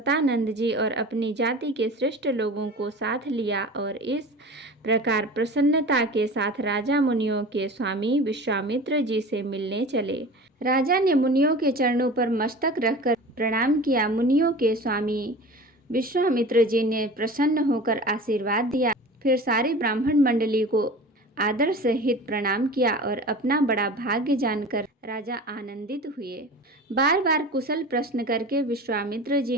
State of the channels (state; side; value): normal; both; correlation 0.37